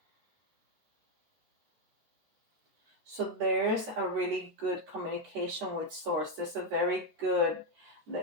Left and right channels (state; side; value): late; left; 14 ms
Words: so there's a really good communication with source. There's a very good,